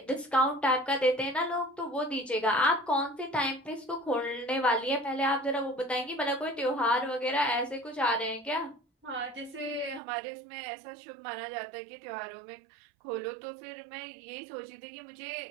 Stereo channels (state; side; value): drops out; left; at 10.0 s